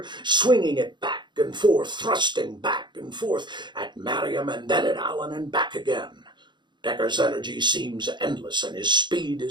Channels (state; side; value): late; left; 0.22 ms